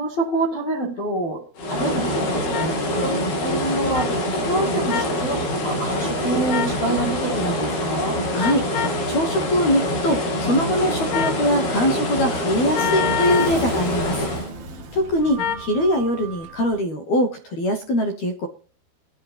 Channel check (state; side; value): late; right; 12 ms